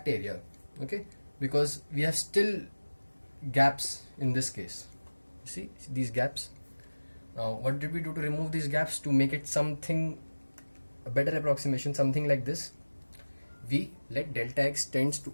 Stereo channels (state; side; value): inverted; both; correlation -1.00